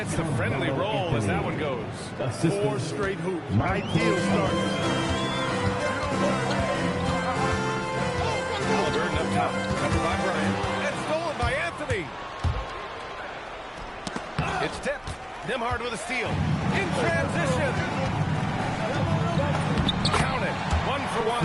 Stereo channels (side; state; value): both; identical; correlation 1.00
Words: the friendly roll as that one goes. 4 straight hoops. Ideal start. Halliburton up top. Covered by Bryant. And stolen by Anthony. It's tipped. Nembhard with a steal. In transition. Count it. 1 for